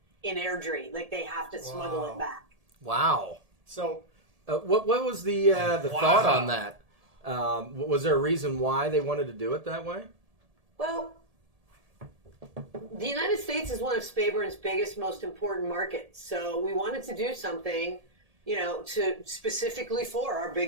in Airdrie. Like they have to smuggle Wow. it back. Wow. So, What was the thought on that? Was there a reason why they wanted to do it that way? Well, the United States is one of Speyburn's biggest, most important markets. So we wanted to do something, to specifically for our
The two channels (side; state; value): left; late; 1.7 ms